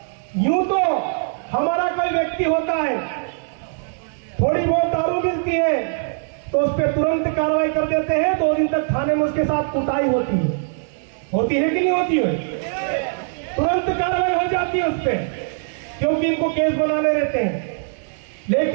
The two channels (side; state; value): left; silent; 65 dB below the other